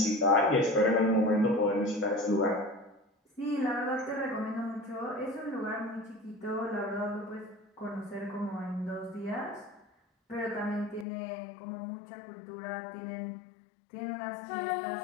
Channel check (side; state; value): right; drops out; at 11.1 s